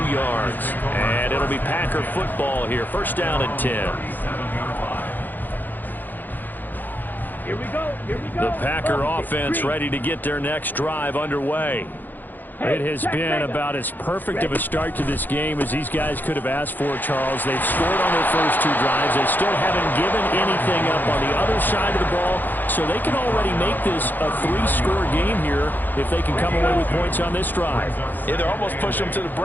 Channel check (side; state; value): right; late; 0.088 ms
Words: yards. And it'll be Packer football here. 1st down and 10. Here we go. The Packer offense ready to get their next drive underway. It has been about as perfect of a start to this game as these guys could have asked for, Charles. They've scored on their first 2 drives. They still haven't given anything up on the other side of the ball, so they can already make this a 3-score game here if they can come away with points on this drive. Yeah, they're almost pushing them to the